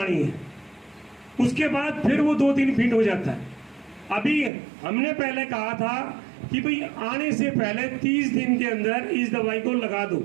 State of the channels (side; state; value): left; drops out; at 4.5 s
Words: है, उसके बाद फिर वो 2-3 फीट हो जाता है। अभी हमने पहले कहा था कि भाई आने से पहले 30 दिन के अंदर इस दवाई को लगा दो।